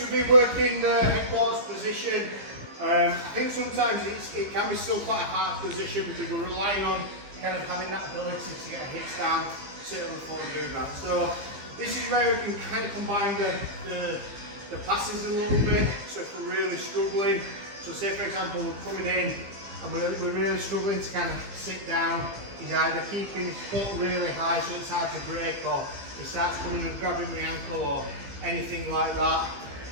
been working the headquarters position. I think sometimes it can be still quite a hard position because we're relying on kind of having that ability to get hits down, sit on the floor and do that. So, this is where we can kind of combine the passes a little bit. So if we're really struggling, so say for example we're coming in and we're really struggling to kind of sit down, he's either keeping his foot really high so it's hard to break, or he starts coming and grabbing the ankle or anything like that.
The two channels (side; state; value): left; late; 15 ms